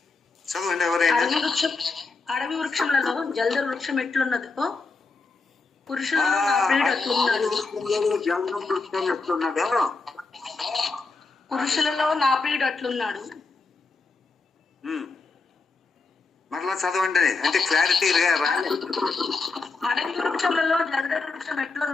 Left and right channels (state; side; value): quieter; right; 4.0 dB